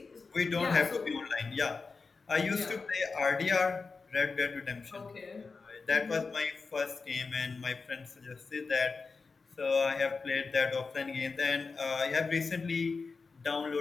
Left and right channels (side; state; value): right; quieter; 4.5 dB